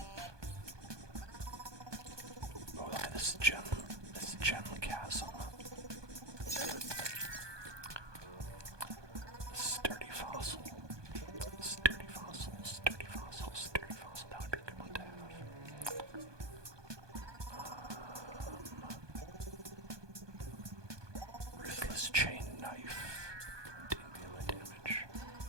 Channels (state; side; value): late; left; 1.2 ms